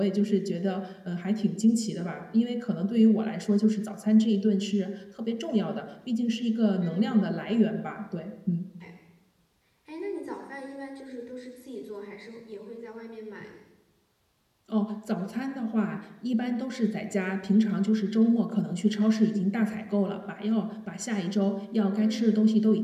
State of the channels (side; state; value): both; identical; correlation 1.00